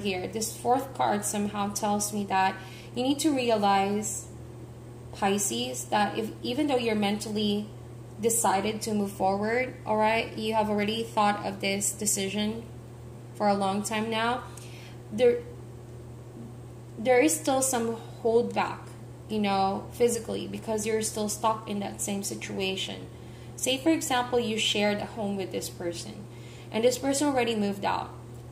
this fourth card somehow tells me that you need to realize, Pisces, that even though you're mentally decided to move forward, all right, you have already thought of this decision for a long time now, there is still some holdback, physically, because you're still stuck in that same situation. Say, for example, you shared a home with this person, and this person already moved out,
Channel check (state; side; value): identical; both; correlation 1.00